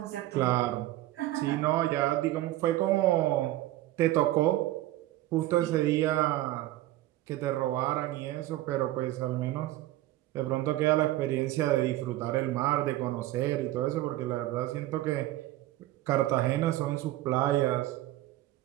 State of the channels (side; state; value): left; quieter; 15.7 dB